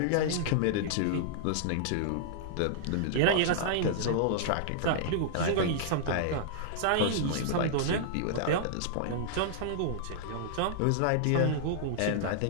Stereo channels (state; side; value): different; both; correlation -0.01